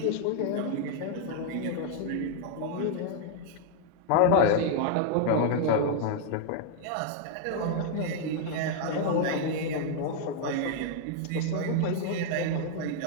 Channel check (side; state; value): both; different; correlation 0.00